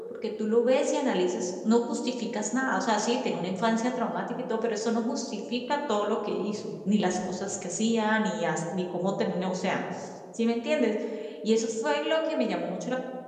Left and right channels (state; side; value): identical; both; correlation 1.00